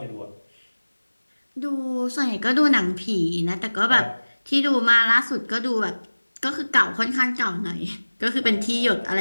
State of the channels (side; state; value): both; inverted; correlation -1.00